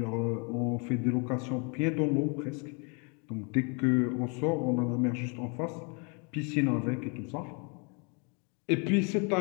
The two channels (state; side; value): quieter; right; 34.6 dB